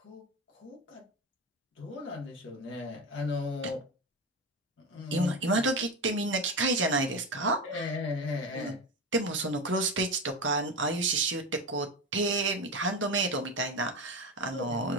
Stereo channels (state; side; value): normal; both; correlation 0.20